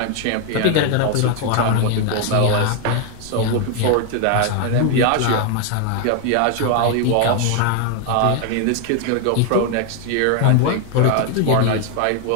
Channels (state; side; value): different; both; correlation 0.00